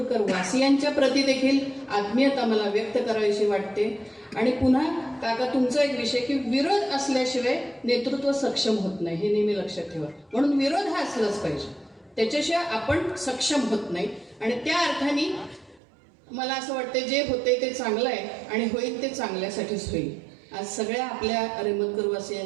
वासियांच्या प्रती देखील आत्मीयता मला व्यक्त करावीशी वाटते. आणि पुन्हा काका तुमचा एक विषय की विरोध असल्याशिवाय नेतृत्व सक्षम होत नाही, हे नेहमी लक्षात ठेवा. म्हणून विरोध हा असलाच पाहिजे, त्याच्याशिवाय आपण सक्षम होत नाही. आणि त्या अर्थाने मला असं वाटतं जे होते ते चांगलं आहे आणि होईल ते चांगल्यासाठीच होईल. आज सगळ्या आपल्या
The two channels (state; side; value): drops out; left; at 15.8 s